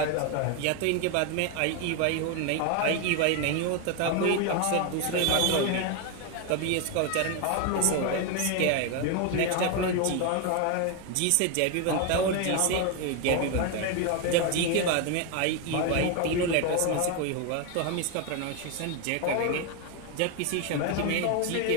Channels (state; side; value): different; both; correlation 0.02